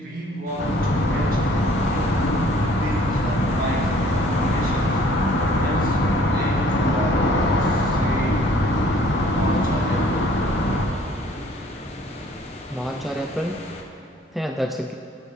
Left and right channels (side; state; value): both; normal; correlation 0.58